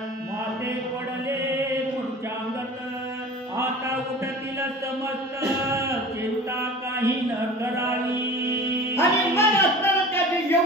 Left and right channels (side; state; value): both; normal; correlation 0.39